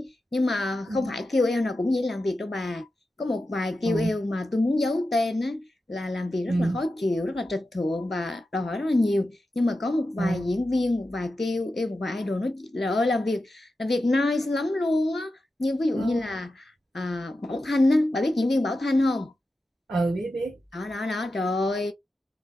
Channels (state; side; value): normal; both; correlation 0.91